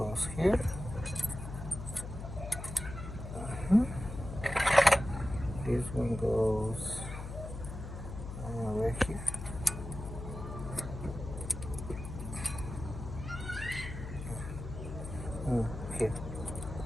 here. This one goes right here. Here.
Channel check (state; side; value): noise; left; hum, 8 dB below the sound